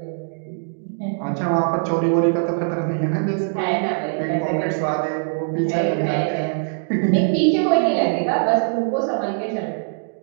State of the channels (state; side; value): silent; left; digital silence